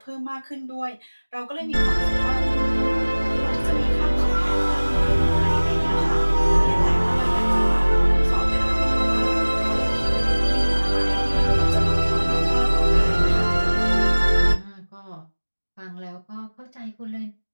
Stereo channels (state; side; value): inverted; both; correlation -1.00